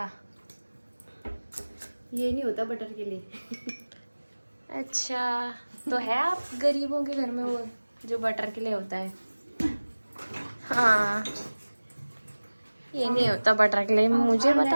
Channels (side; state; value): both; inverted; correlation -1.00